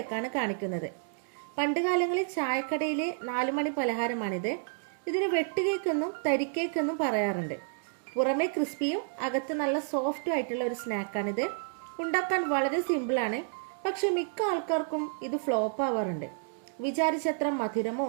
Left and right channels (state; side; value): silent; left; digital silence